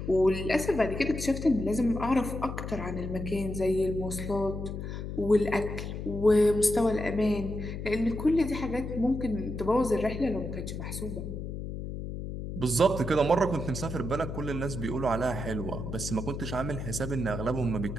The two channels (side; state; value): left; noise; hum, 6 dB below the sound